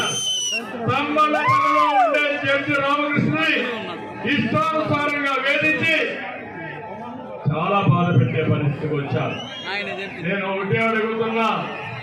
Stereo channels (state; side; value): identical; both; correlation 1.00